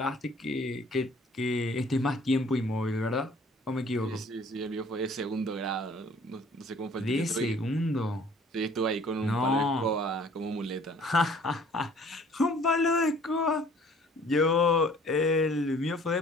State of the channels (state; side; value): normal; both; correlation 0.54